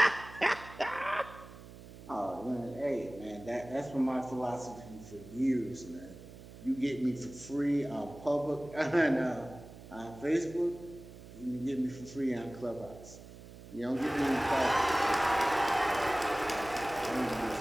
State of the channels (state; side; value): noise; right; hum, 17 dB below the sound